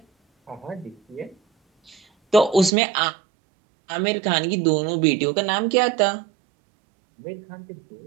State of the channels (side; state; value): left; drops out; at 2.7 s